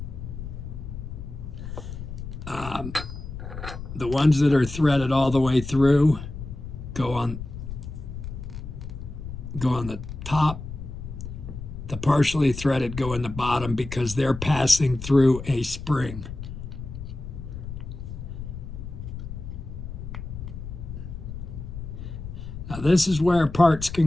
The ones that are threaded all the way through go on the top. The partially threaded go in the bottom because they're passing through a spring. Now this is where parts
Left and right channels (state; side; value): noise; left; rumble, 9 dB below the sound